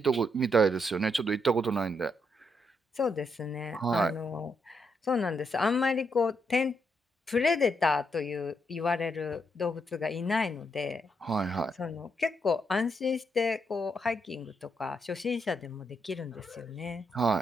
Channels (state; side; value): normal; both; correlation 0.79